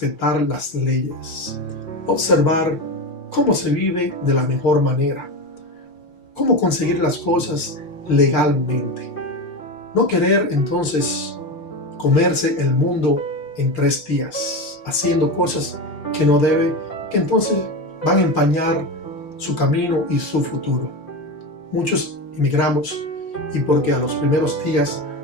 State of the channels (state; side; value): late; right; 5.8 ms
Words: las leyes, observar cómo se vive de la mejor manera, cómo conseguir las cosas legalmente. No querer entonces comerse el mundo en 3 días, haciendo cosas que no debe, que entonces van a empañar su camino y su futuro. Muchos emigramos y porque a los primeros días